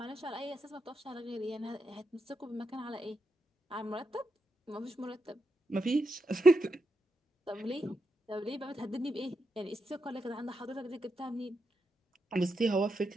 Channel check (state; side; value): normal; both; correlation 0.85